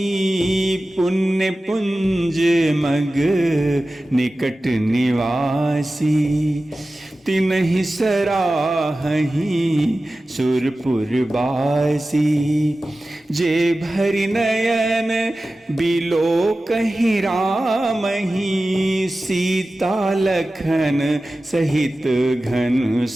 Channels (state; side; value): normal; both; correlation 0.95